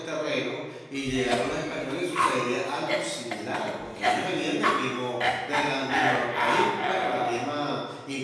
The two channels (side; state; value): both; identical; correlation 1.00